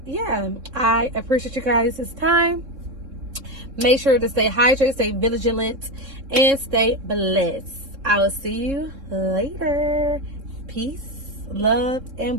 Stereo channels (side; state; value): left; late; 3.6 ms